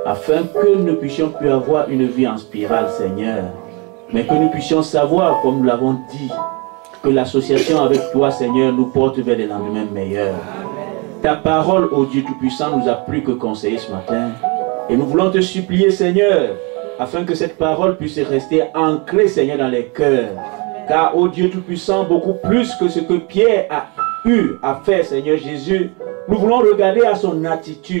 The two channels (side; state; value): left; quieter; 30.5 dB